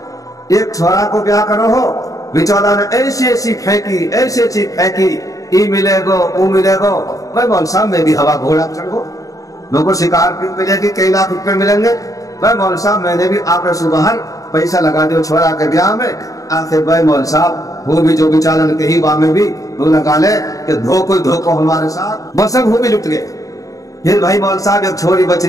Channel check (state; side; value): late; right; 0.16 ms